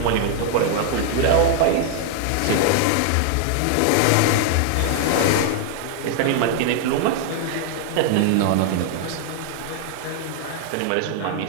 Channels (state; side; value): different; both; correlation 0.00